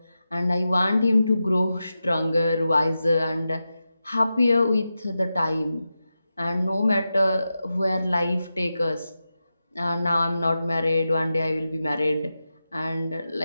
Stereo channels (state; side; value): inverted; both; correlation -0.91